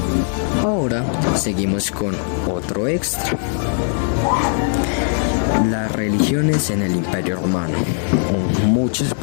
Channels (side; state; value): right; silent; 57 dB below the other